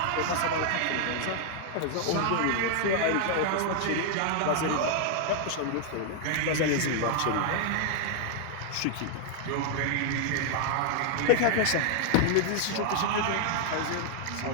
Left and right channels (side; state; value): both; different; correlation 0.00